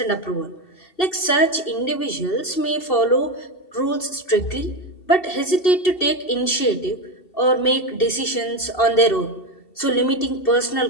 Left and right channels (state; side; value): late; right; 2.7 ms